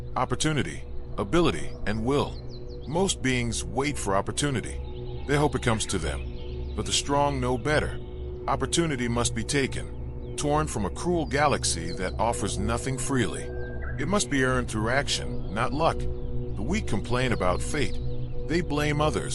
opportunity, ability, and will. Most beings wait for opportunity. They hope it comes to them. But the strong know better. Opportunity must be taken, torn from a cruel galaxy that offers nothing freely. It must be earned through action, not luck. The weak complain about fate. They blame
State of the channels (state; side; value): identical; both; correlation 1.00